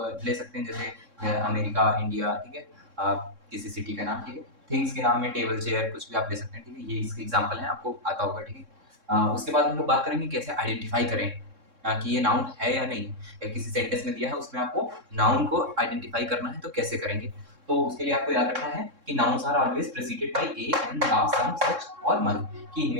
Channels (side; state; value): left; late; 3.6 ms